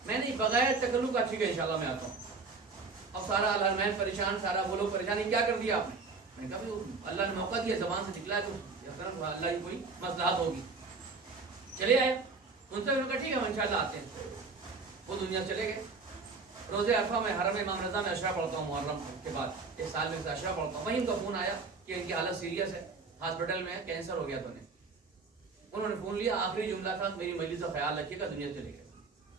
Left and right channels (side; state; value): left; quieter; 4.3 dB